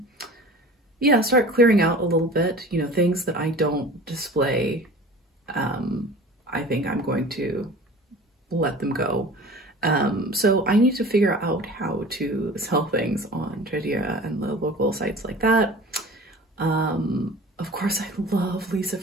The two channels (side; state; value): both; normal; correlation 0.40